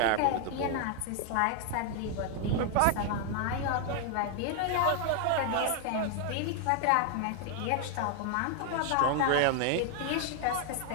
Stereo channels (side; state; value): both; different; correlation 0.00